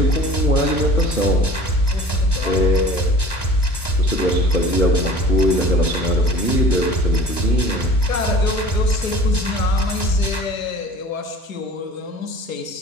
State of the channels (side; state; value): right; late; 1.1 ms